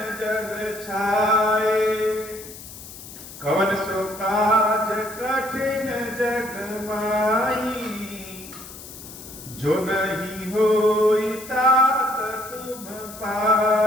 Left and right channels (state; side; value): noise; left; hiss, 15 dB below the sound